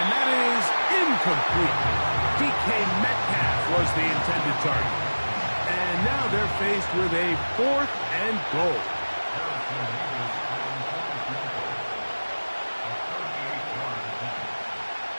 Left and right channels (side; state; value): both; inverted; correlation -1.00